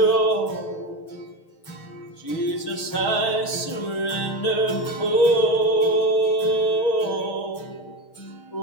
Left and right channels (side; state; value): right; late; 6.2 ms